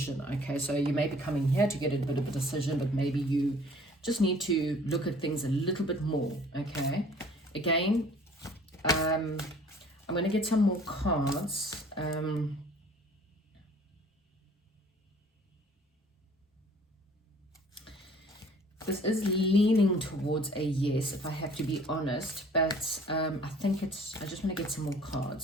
okay? So you may be coming here to get a bit of a decision, but maybe you just need to look at things a little bit more, okay? Again, I'm going to get some more cards. This is leaning towards a yes, if I have to be honest, but I think I just want to get some more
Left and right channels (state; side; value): normal; both; correlation 0.53